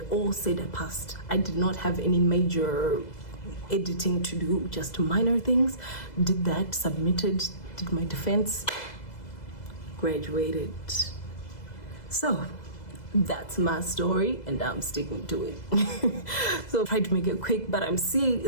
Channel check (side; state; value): right; late; 2.0 ms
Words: all said I passed. I did not have any major editing to do, just minor things. Did that, submitted, did my defense, graduated. So that's my story and I'm sticking to it. So I tried to make it quick, but I'm seeing